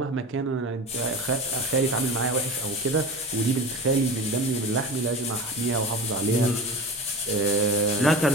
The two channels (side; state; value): both; normal; correlation 0.31